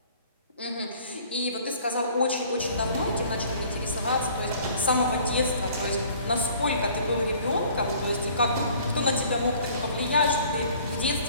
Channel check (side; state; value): both; inverted; correlation -0.53